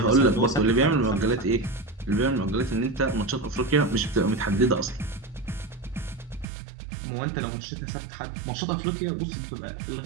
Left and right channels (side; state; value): left; drops out; at 6.5 s